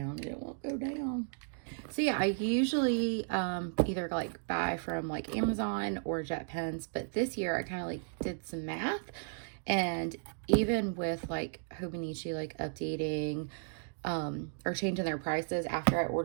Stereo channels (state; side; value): silent; left; digital silence